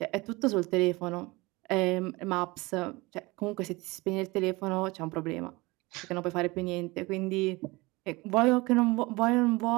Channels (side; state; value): left; quieter; 23.2 dB